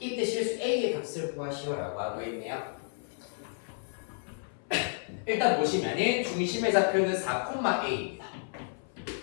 실수 a의 값을 구하시오라고 하고 있네요. 일단 보시면은 중심의 좌표는 4,a입니다.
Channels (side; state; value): right; silent; 56 dB below the other